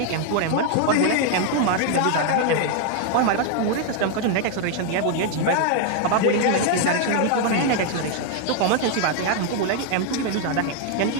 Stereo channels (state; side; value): different; both; correlation 0.00